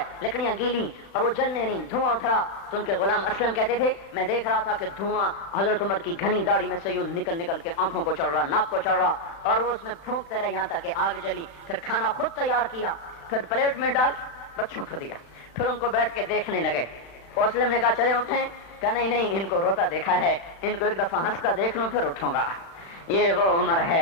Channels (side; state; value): right; late; 36 ms